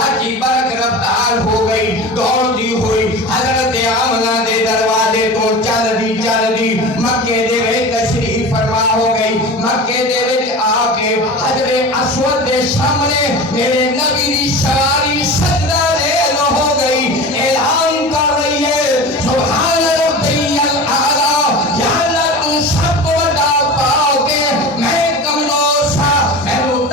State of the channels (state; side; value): normal; both; correlation 0.32